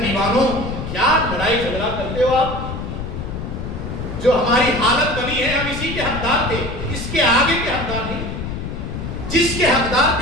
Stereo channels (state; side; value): noise; left; rumble, 6 dB below the sound